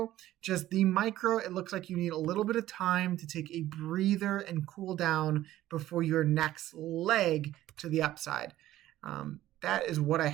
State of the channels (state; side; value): quieter; left; 14.3 dB